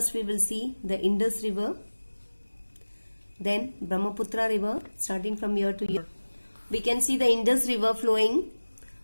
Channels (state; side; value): inverted; both; correlation -1.00